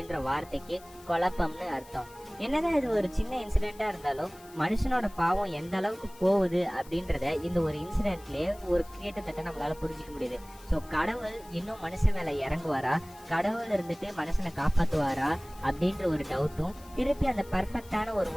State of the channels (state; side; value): noise; left; hiss, 23 dB below the sound